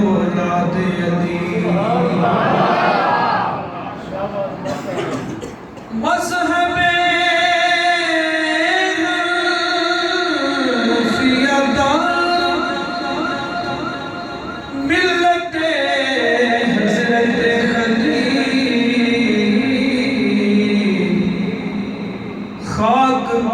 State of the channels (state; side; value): identical; both; correlation 1.00